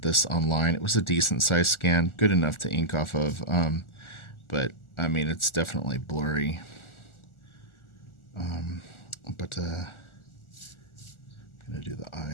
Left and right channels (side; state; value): right; late; 1.4 ms